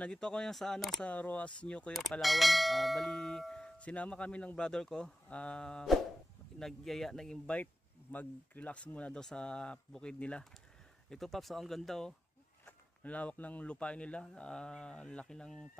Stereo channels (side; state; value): both; normal; correlation 0.93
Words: ako sa sa Roas New Cuyo, Palawan. Bali sinama kami ng brother ko. Nag-invite mag-relax muna daw sa bukid nila. Ito Paps, ang ganda oh. Ang lawak ng lupain nila, laki ng